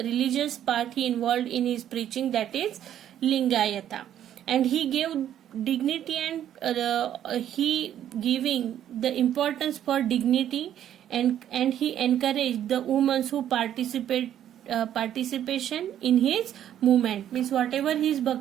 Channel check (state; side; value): quieter; left; 10.7 dB